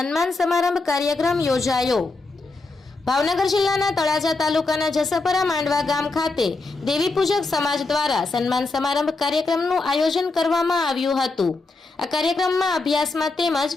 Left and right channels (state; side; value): quieter; right; 3.6 dB